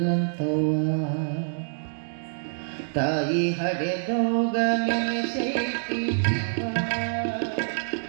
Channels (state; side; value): silent; left; digital silence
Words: ತಾಯಿ ಹಡೆದೋಗ ನೆನೆಸೈತಿ ಜೀವ,